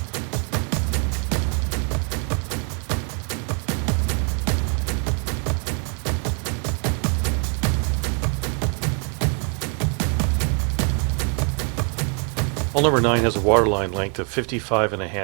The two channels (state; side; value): quieter; left; 39.0 dB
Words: Hull number 9 has a waterline length of